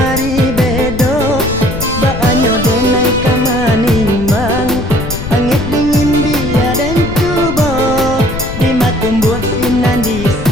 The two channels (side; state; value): left; noise; rumble, 8 dB below the sound